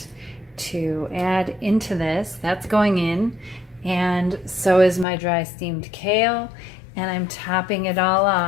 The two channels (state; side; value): drops out; right; at 5.1 s